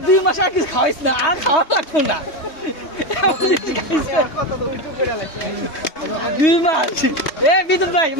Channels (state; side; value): late; right; 3.2 ms